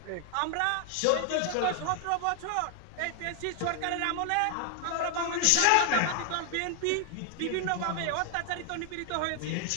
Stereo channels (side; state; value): both; different; correlation 0.00